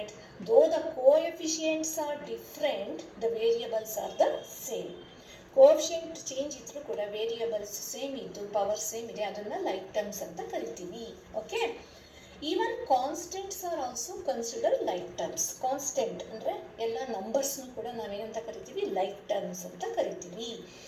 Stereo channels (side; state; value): both; identical; correlation 1.00